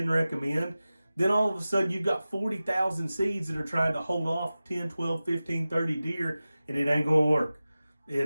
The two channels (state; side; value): inverted; both; correlation -0.96